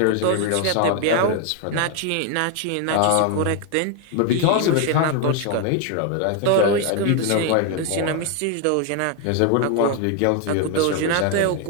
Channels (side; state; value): both; different; correlation 0.01